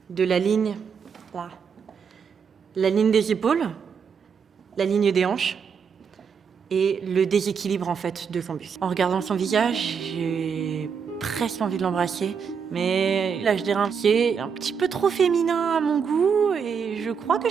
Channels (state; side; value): quieter; left; 6.5 dB